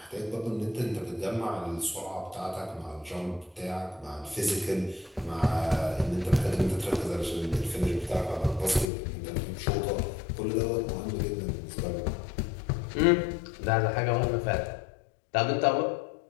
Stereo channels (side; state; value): right; drops out; at 8.8 s